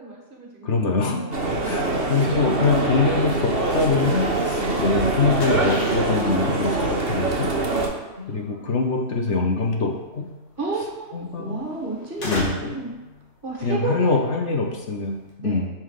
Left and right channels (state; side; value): late; right; 2.7 ms